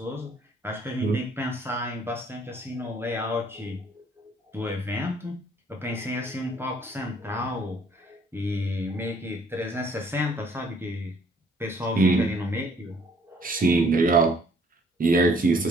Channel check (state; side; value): normal; both; correlation 0.61